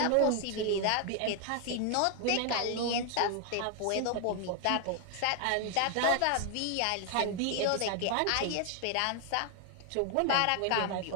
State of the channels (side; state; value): both; different; correlation 0.00